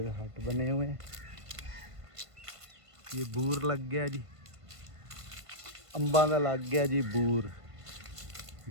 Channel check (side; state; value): left; late; 1.5 ms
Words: हट बने हुए हैं। ये बूर लग गया जी, अंबा का लग गया जी बूर।